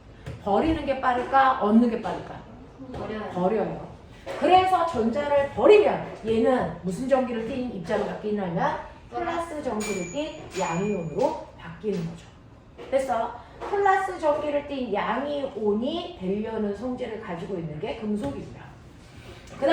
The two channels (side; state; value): both; identical; correlation 1.00